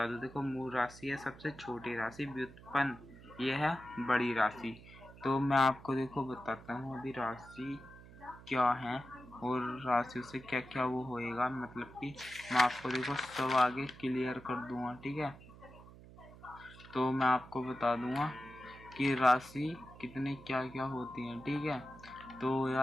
दूं, देखो मूल राशि है सबसे छोटी राशि, व्युत्पन्न ये है बड़ी राशि। तो मैं आपको देखो बताता हूँ अभी राशि क्या है और राशियों से क्या क्या वो होएगा, मतलब कि मैं आपको देखो सब आगे क्लियर कर दूंगा, ठीक है। तो मैं आपको बता दूंगा कि राशि कितने क्या क्या होती हैं, ठीक है। तो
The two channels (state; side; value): noise; right; hum, 19 dB below the sound